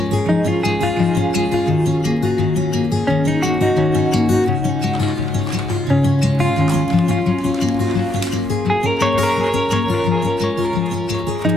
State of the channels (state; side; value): normal; both; correlation 0.77